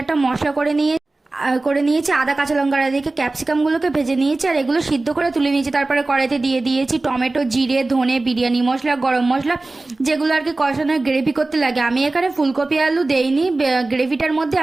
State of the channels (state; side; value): quieter; left; 3.1 dB